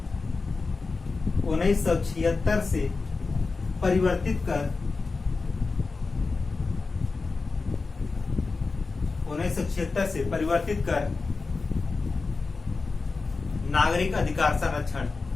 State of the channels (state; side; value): quieter; right; 4.1 dB